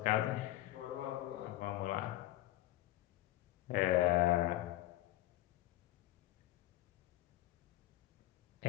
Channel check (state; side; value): quieter; right; 15.6 dB